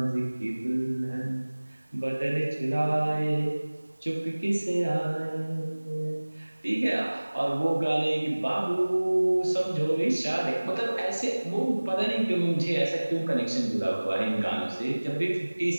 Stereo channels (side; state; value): both; inverted; correlation -1.00